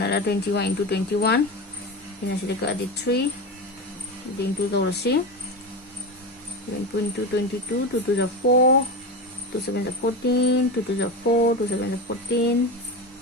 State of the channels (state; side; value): normal; both; correlation 0.22